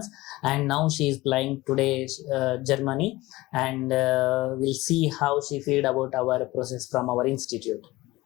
and now she is flying today Germany, and we'll see how she feel about our process from our institute.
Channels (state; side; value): quieter; right; 19.3 dB